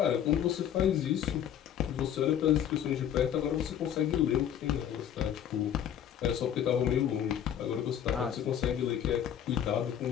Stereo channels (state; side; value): quieter; right; 9.8 dB